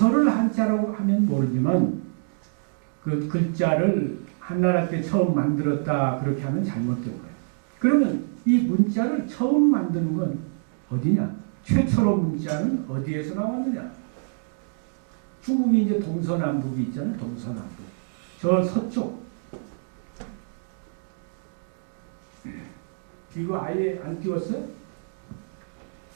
한자라고 하면 모르지만 그 글자를 한나라 때 처음 만들었다 그렇게 하면 잘못된 거예요. 그러면 이 문자를 처음 만드는 건 어디냐? 최초로 문자는 어디에서 나왔느냐? 중국이 이제 동서남북이 있잖아요. 동서남북. 저 서쪽. 이거 아예 안 띄웠어요?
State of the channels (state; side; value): silent; left; digital silence